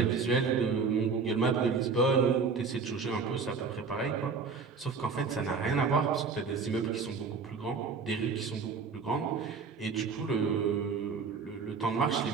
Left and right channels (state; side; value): quieter; left; 5.1 dB